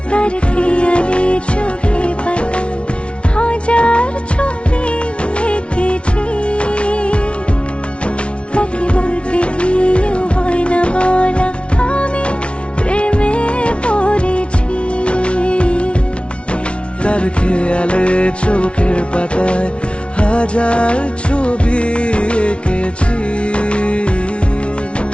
তার খেয়ালে চোখে পাতায় হাজার ছবি এঁকেছি, তাকে বলতে গিয়েও হয় না বলা আমি প্রেমে পড়েছি। তার খেয়ালে চোখের পাতায় হাজার ছবি এঁকেছি,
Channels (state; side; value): late; right; 0.060 ms